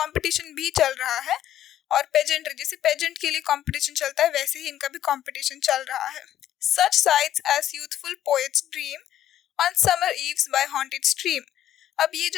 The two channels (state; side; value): quieter; right; 11.8 dB